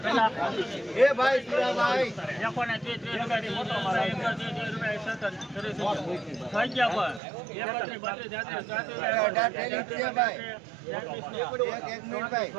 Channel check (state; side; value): drops out; left; at 7.2 s